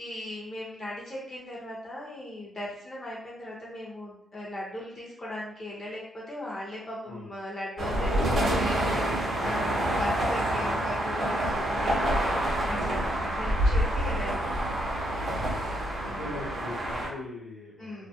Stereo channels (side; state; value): both; normal; correlation 0.76